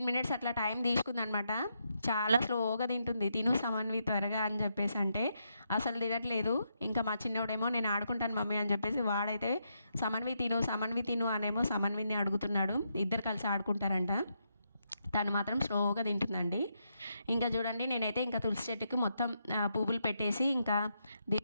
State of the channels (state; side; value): inverted; both; correlation -0.81